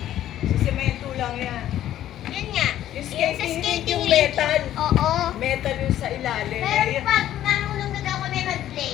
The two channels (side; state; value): right; quieter; 12.3 dB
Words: Sa semento lang yan. Yan nga. Yung Sa skating ring, yung ring. metal. Oo. Metal yung sa ilalim. Pero Eh, pag marunong na daw kami